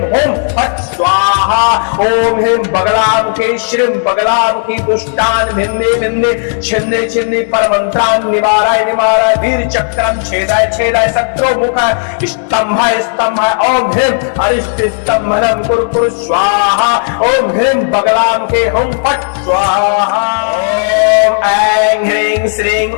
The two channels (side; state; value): right; silent; digital silence